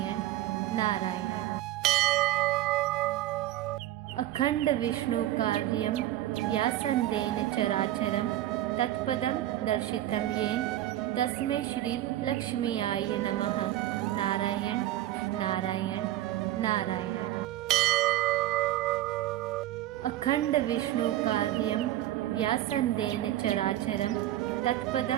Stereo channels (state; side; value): quieter; left; 14.1 dB